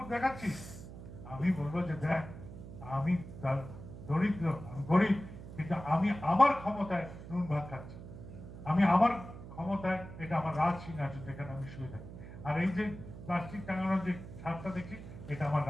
দেখাচ্ছিস। আমি বলবো যে দেখ, আমি দরিদ্র, আমি গরিব, কিন্তু আমি আমার ক্ষমতায় নুন ভাত খাচ্ছি। আমি আমার ক্ষমতায়, এটা আমার রাজ সিংহাসন যেখানে আমি শুয়ে থাকি। আর এই যে প্লাস্টিক টাঙানোর যে ছাদটা দেখছি, এটা আমার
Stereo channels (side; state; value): right; noise; hum, 13 dB below the sound